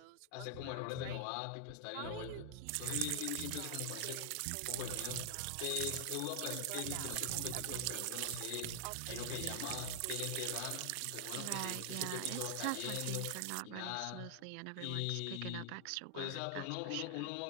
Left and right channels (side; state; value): both; different; correlation 0.00